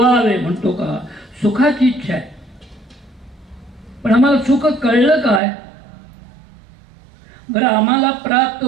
म्हणतो का, सुखाची इच्छा आहे, पण आम्हाला सुख कळलं काय, बरं आम्हाला प्राप्त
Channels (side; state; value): left; drops out; at 5.4 s